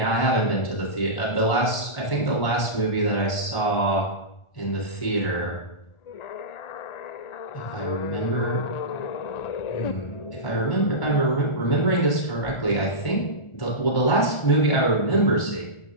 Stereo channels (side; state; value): right; late; 1.4 ms